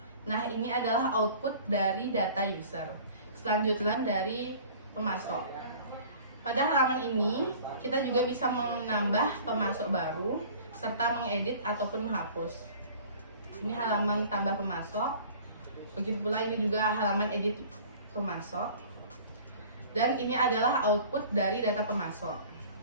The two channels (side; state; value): both; inverted; correlation -0.46